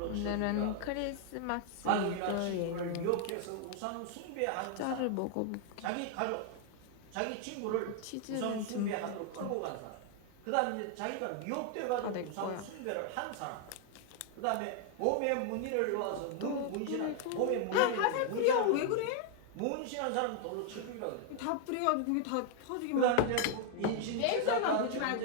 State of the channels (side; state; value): both; different; correlation 0.00